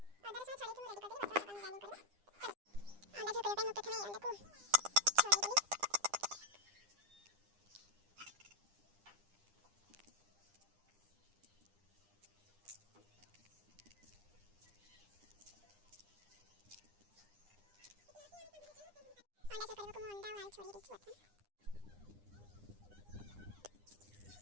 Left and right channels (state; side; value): late; left; 9.9 ms